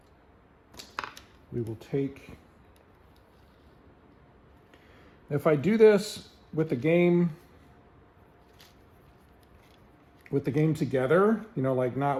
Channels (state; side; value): identical; both; correlation 1.00